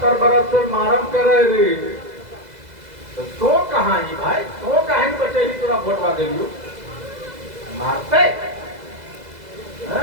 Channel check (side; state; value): left; late; 2.0 ms